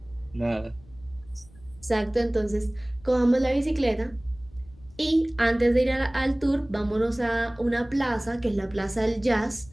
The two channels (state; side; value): noise; left; rumble, 24 dB below the sound